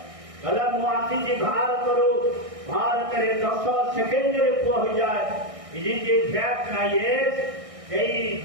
କହିଲା ମୁଁ ଆସିଛି ଭାରତରୁ, ଭାରତରେ 10 ସେକେଣ୍ଡରେ ପୁଅ ହୋଇଯାଏ। ଇଏ ଫ୍ୟାକ୍ଟ ନା ୟେସ୍? ସେଇ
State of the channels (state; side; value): late; left; 1.6 ms